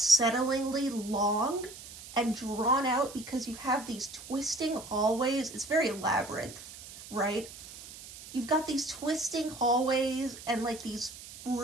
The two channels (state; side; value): noise; right; hiss, 15 dB below the sound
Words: long and drawn out because you have these twisting hallways. It's very labyrinth, right? You've got these twisting hallways and like these